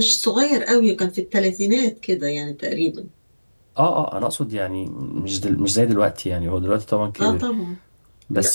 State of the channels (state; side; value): inverted; both; correlation -1.00